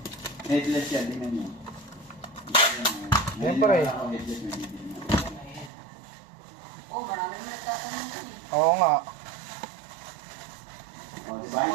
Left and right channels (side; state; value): left; drops out; at 5.7 s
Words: Headless yan, tingnan nyo. Siyempre. Ako headless, may bibili mo. Oh, marami mo nagtatanong yun eh. Oo nga. O, diba?